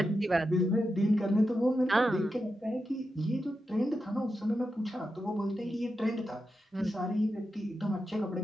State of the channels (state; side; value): normal; both; correlation 0.88